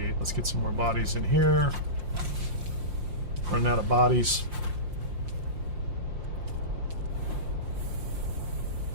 Let's get some more bodies in here. Running out of bodies.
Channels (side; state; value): left; late; 5.7 ms